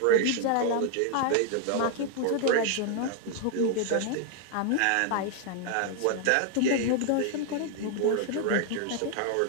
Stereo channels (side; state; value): both; different; correlation 0.00